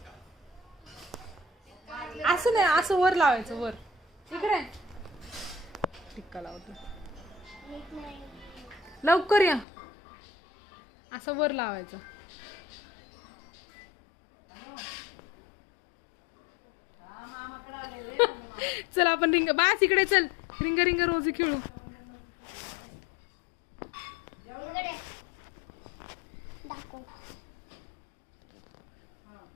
असं नाही, असं वर लावायचं, वर इकडे टिक्का लावतो. लवकर या, असं वर लावायचं. चल आपण रिंग, बास इकडे चल, रिंग रिंग रोजी खेळू.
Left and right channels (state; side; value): drops out; right; at 9.7 s